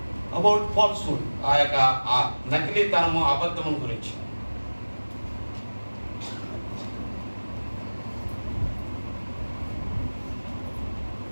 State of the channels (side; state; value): both; inverted; correlation -1.00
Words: about falsehood. ఆ యొక్క ఆ నకిలీతనము, అబద్ధము గురించి.